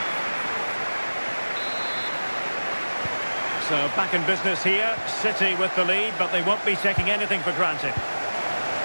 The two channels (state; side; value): inverted; both; correlation -1.00